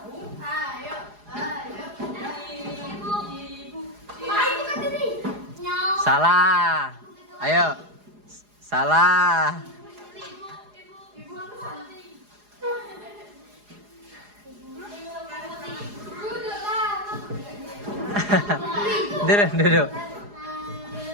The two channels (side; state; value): left; late; 4.8 ms